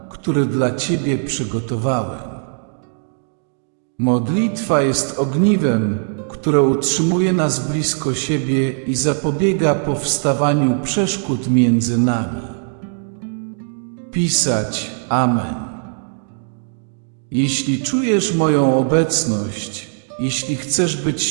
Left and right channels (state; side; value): silent; left; digital silence